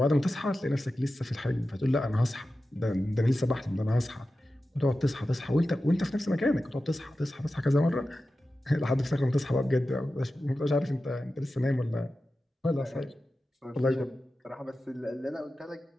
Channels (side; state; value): both; normal; correlation 0.93